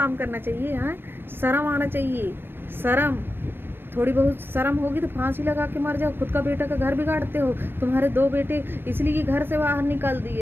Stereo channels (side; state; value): left; late; 0.099 ms